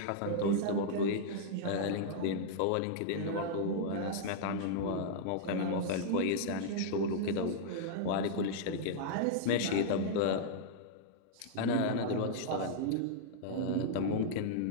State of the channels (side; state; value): both; different; correlation -0.02